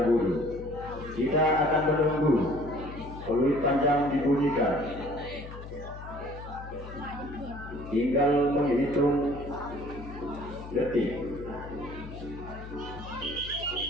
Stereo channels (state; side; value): noise; left; hum, 12 dB below the sound